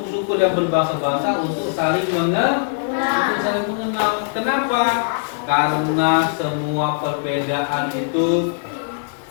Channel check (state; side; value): silent; right; digital silence